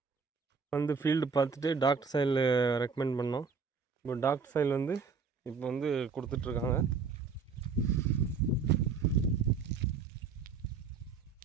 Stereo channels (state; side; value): quieter; left; 5.3 dB